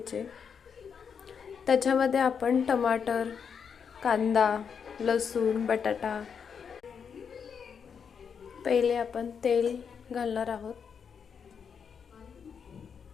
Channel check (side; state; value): right; quieter; 6.7 dB